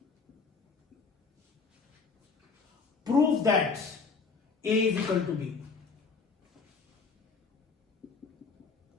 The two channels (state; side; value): quieter; right; 4.8 dB